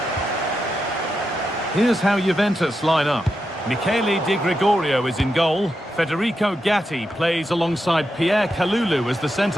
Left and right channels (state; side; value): normal; both; correlation 0.86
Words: Here's how Juventus line up. Michele Di Gregorio is in goal. Federico Gatti plays alongside Pierre Kalulu as the